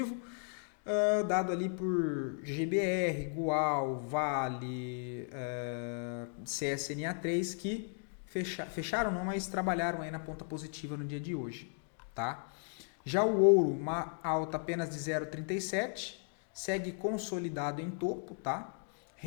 dado ali por GBR, Gual, Vale, CSNA3, que fecharam não, mas trabalharam aí na ponta positiva no dia de hoje. Tá? Já o ouro, uma alta apenas de 0,37, segue consolidado em topo, tá?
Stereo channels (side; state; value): right; silent; 54 dB below the other